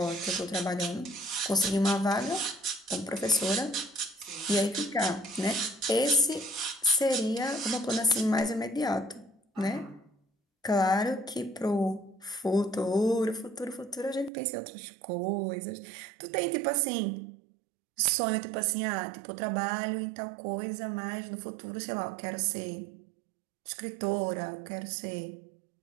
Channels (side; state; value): left; drops out; at 14.3 s